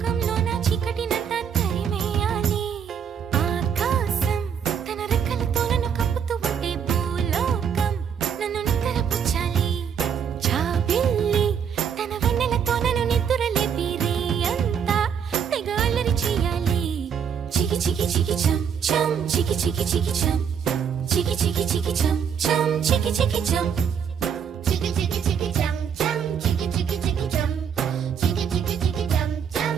నా చీకటినంతా తరిమేయాలి. ఆకాశం తన రెక్కలతో నన్ను కప్పుతూ ఉంటే భూలోకం నన్ను నిక్కరపుచ్చాలి. జాబిల్లి తన వెన్నెలతో నన్ను నిద్రలేపి రే అంతా తెగ అల్లరి చేయాలి. చికి చికి చికి చం చం, చికి చికి చికి చం, చికి చికి చికి చం చం, చికి చికి చం. Chiki chiki chiki chum chum, chiki chiki chiki chum, chiki chiki chiki chum chum,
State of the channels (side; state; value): left; quieter; 7.6 dB